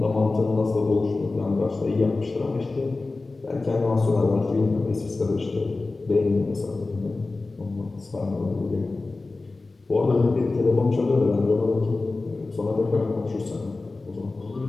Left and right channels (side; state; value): right; quieter; 3.5 dB